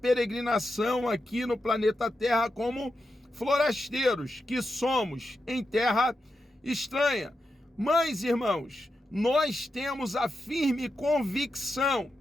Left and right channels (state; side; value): normal; both; correlation 0.87